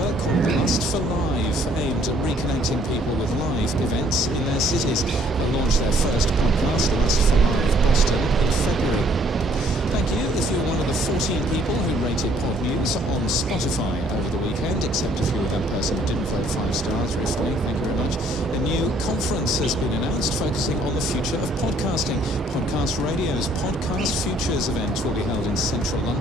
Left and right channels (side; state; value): both; normal; correlation 0.62